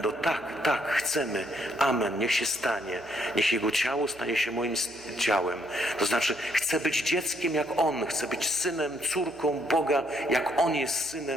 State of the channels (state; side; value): noise; right; hum, 26 dB below the sound